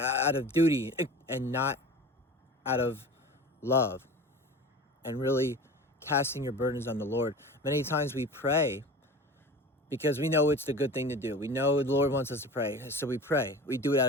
of duty and not out of love, and really casting your burdens on the Lord. Many times we pray because we know it's the good thing to do. We know the Lord wants us to pray, so we pray. We do it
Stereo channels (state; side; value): normal; both; correlation 0.37